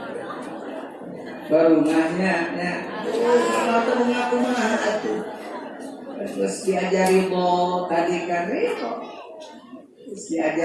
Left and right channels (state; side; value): identical; both; correlation 1.00